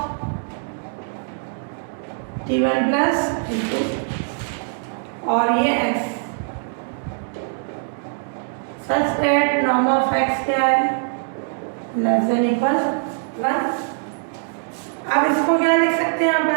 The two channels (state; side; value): silent; left; digital silence